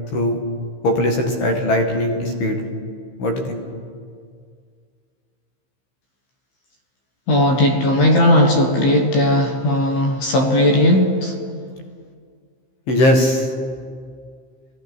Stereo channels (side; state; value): right; late; 15 ms